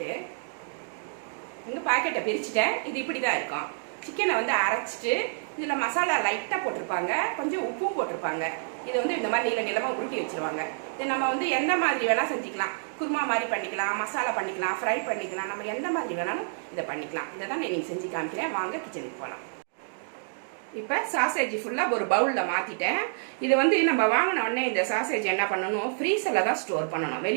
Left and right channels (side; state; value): left; silent; digital silence